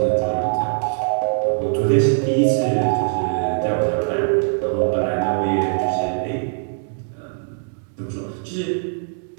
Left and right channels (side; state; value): left; silent; digital silence